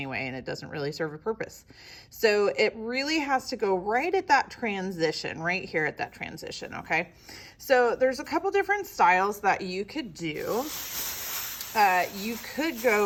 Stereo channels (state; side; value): identical; both; correlation 1.00